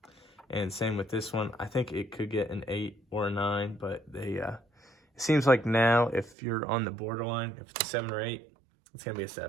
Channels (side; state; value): left; drops out; at 6.4 s